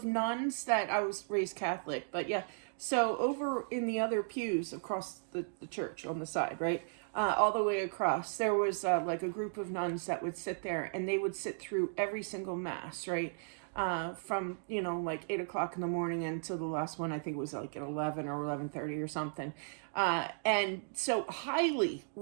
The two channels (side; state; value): left; silent; digital silence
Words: nuns that, I was raised Catholic, but yeah, so over in the other pews across the church on the side, right? All the way across, there was like a group of nuns that would sit there, and they would sit through every single mass, right? From like 8 o'clock in the morning until the last one. I think it was like at 11 or 11:30 or something. And so highly